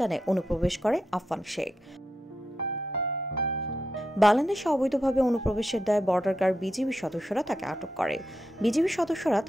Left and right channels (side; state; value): both; normal; correlation 0.85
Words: অনুপ্রবেশ করে আফফান শেখ। বাংলাদেশে অবৈধভাবে অনুপ্রবেশের দায়ে বর্ডার গার্ড বিজিবি সদস্যরা তাকে আটক করে। বিজিবি সদস্যরা